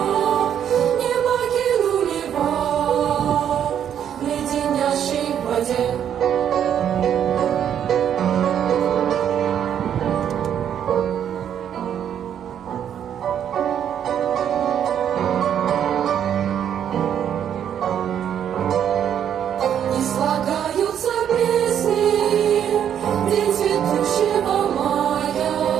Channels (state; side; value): quieter; left; 9.3 dB